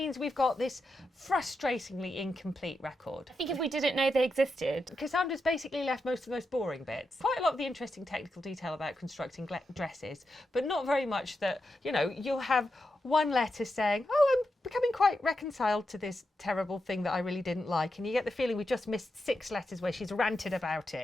we've got this frustratingly incomplete record. I think if we didn't know they existed. Cassandra's basically left most of the most boring bits. Quite a lot of the interesting technical detail about constructing dresses, but not very much that, you know, you'll have one letter saying, oh, I'm becoming quite reconciled to this terrible thing that I really didn't like. And you get the feeling we just missed 6 letters where she's ranted about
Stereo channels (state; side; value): normal; both; correlation 0.87